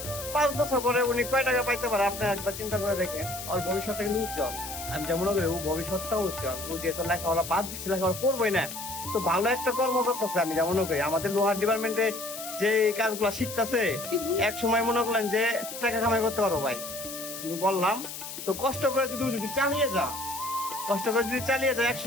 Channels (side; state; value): left; noise; hiss, 9 dB below the sound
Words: 5 বছর পরে উনি কয় টাকা পাইতে পারে আপনি একবার চিন্তা করে দেখেন। ওর ভবিষ্যৎটা কিন্তু উজ্জ্বল। আমি যেমন করি ও ভবিষ্যৎটাও উজ্জ্বল। ও যেহেতু লেখাপড়া বাদ দিচ্ছে, লেখাপড়া করবোই না, তো ভালো একটা কর্ম করতেছে। আমি যেমন করি আমাদের লোহার ডিপার্টমেন্টে যে কাজগুলো শিখতেছে, এক সময় মনে করলেন যে টাকা কামাই করতে পারো ভাই। কিন্তু বললাম তো কষ্ট করে যদি চালিয়ে যা, কষ্ট করে যদি চালিয়ে যায়, এক